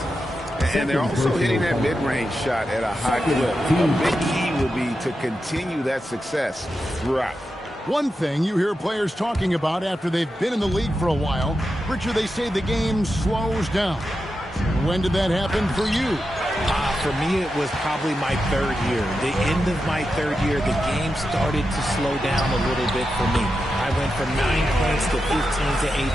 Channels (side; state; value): both; normal; correlation 0.89